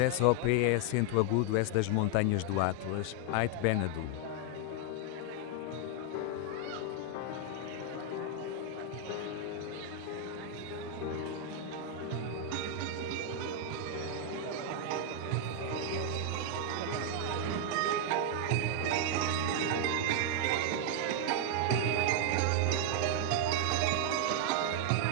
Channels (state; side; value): different; both; correlation 0.00